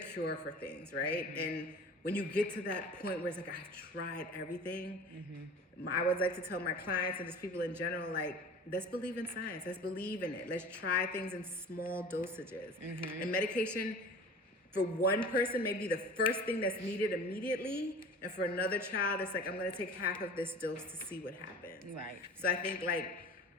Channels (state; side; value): normal; both; correlation 0.40